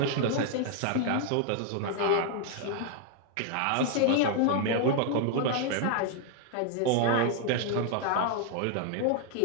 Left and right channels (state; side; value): different; both; correlation 0.00